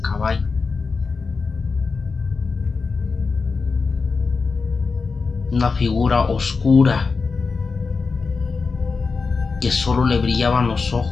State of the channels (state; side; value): quieter; right; 4.6 dB